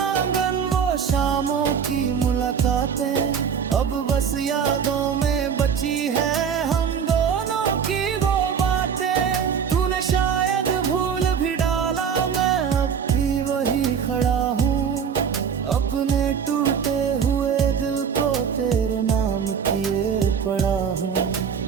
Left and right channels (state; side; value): quieter; left; 7.1 dB